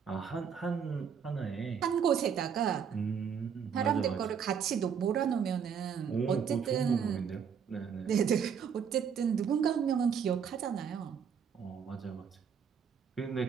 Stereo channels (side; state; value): left; quieter; 7.2 dB